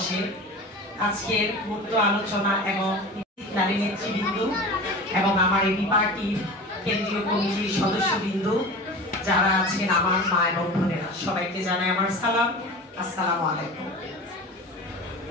আজকের মুক্ত আলোচনা এবং নারী নেতৃবৃন্দ এবং আমার এবি পার্টির কেন্দ্রীয় কমিটির সদস্যবৃন্দ যারা আছেন আমার মা এবং বোনেরা সবাইকে জানাই আমার সালাম। আসসালামু আলাইকুম।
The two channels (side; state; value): both; normal; correlation 0.34